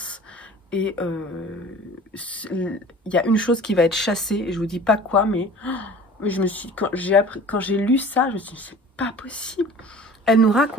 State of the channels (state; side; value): normal; both; correlation 0.44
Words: et il y a une chose qui va être chassée, et je vous dis pas quoi, mais quand j'ai lu ça, je me suis dit, c'est pas possible. Elle nous